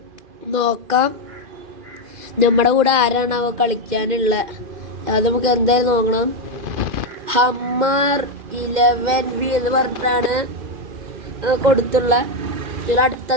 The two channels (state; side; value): late; left; 2.5 ms